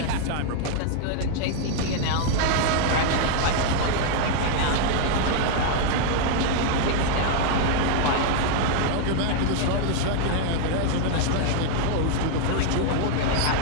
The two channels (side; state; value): both; different; correlation 0.00